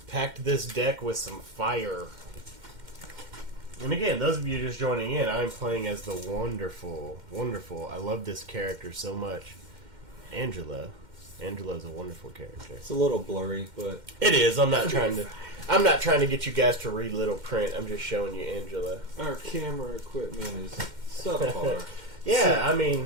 packed this deck with some fire. And again, those of you just joining in, I'm playing as the wonderful, I love this character so much, Angela. Angela's a wonderful character. It's a little blurry, but It is. I'm not trying to get you guys to read little print. I'm just showing you Angela. our camera equipment is subpar. Yeah, I mean,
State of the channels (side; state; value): left; late; 2.1 ms